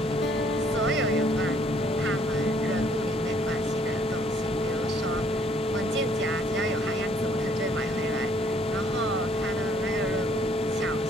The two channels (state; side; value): normal; both; correlation 0.63